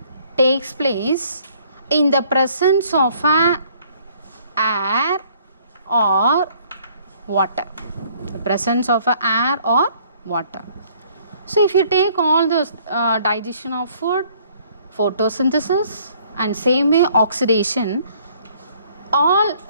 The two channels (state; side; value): inverted; both; correlation -0.60